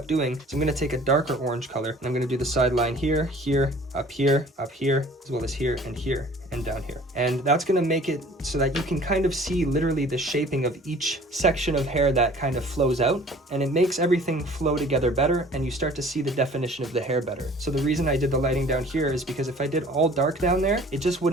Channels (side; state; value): both; normal; correlation 0.50